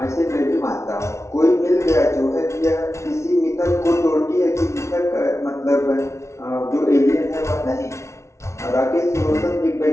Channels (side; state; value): right; late; 0.13 ms